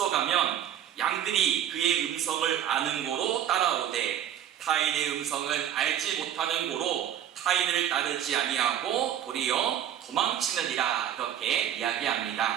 양들이 그의 음성을 아는 고로 따라오되 타인의 음성은 알지 못하는 고로 타인을 따르지 아니하고 도리어 도망치느니라. 이렇게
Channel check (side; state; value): left; quieter; 10.3 dB